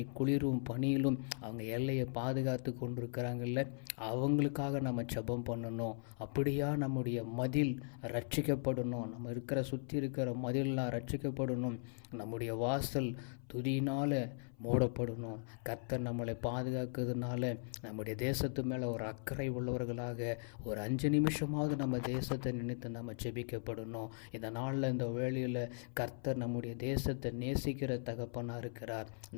குளிரும் பனியிலும் அவங்க எல்லையை பாதுகாத்து கொண்டிருக்கிறாங்கல்ல, அவங்களுக்காக நம்ம ஜெபம் பண்ணணும். அப்படியா நம்முடைய மதில் ரட்சிக்கப்படணும். நம்ம சுற்றி இருக்கிற மதிலெலாம் ரட்சிக்கப்படணும். நம்முடைய வாசல் துதியினால் மூடப்படணும். கர்த்தர் நம்மளை பாதுகாக்கிறதுனால நம்முடைய தேசத்து மேலே ஒரு அக்கறை உள்ளவர்களாக ஒரு 5 நிமிஷமாவது நம்ம தேசத்தை நினைத்து நம்ம ஜெபிக்கப்படணும். இந்த நாளில் இந்த வேளையில் கர்த்தர் நம்முடைய தேசத்தை நேசிக்கிற தகப்பனாக இருக்கிறார்.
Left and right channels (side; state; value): right; silent; 52 dB below the other